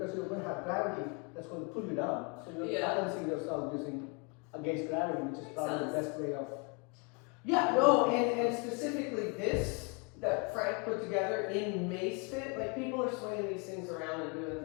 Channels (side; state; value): right; quieter; 32.3 dB